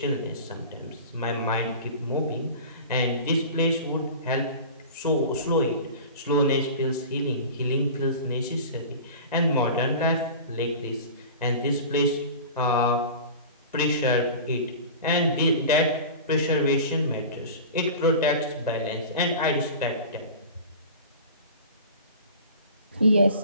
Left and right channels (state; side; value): inverted; both; correlation -0.36